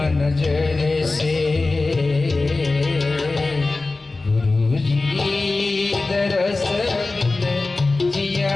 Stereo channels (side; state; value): right; quieter; 3.4 dB